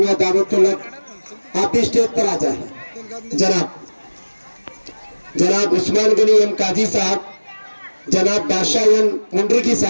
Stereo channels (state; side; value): inverted; both; correlation -1.00